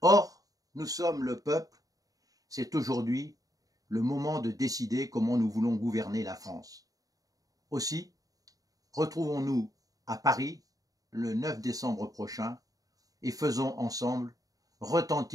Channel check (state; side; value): late; left; 0.17 ms